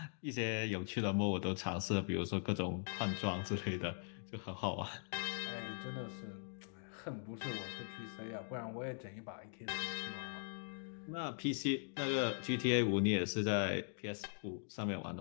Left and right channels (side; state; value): right; silent; digital silence